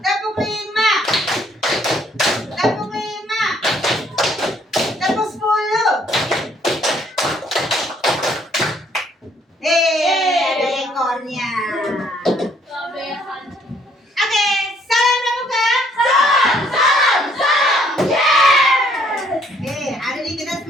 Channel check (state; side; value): normal; both; correlation 0.65